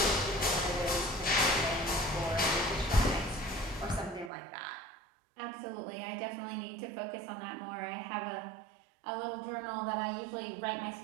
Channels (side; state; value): left; drops out; at 4.3 s